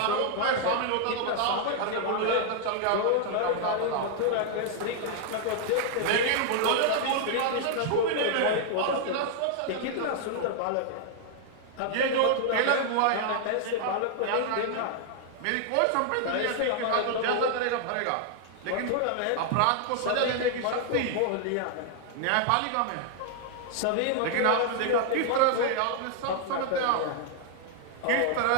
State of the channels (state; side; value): different; both; correlation 0.00